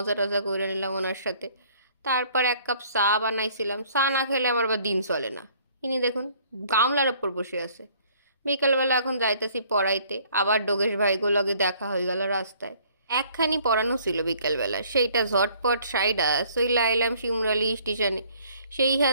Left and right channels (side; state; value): both; inverted; correlation -0.59